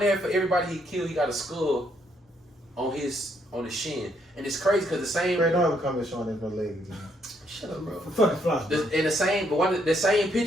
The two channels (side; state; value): both; normal; correlation 0.73